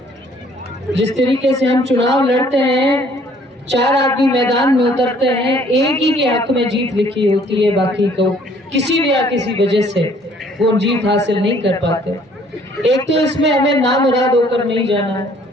जिस तरीके से हम चुनाव लड़ते हैं, 4 आदमी मैदान में उतरते हैं, एक ही के हक में जीत लिखी होती है, बाकी को किसी भी या किसी वजह से वो जीत हासिल नहीं कर पाते। एक तो इसमें हमें नामुराद होकर नहीं जाना है।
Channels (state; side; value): normal; both; correlation 0.59